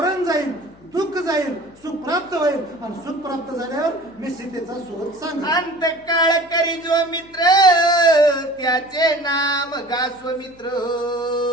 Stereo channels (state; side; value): noise; left; hum, 27 dB below the sound